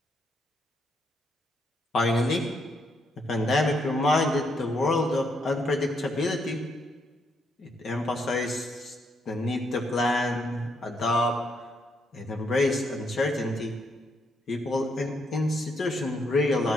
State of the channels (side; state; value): both; normal; correlation 0.75